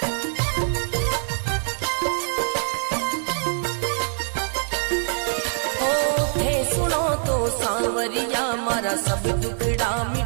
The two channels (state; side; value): silent; left; digital silence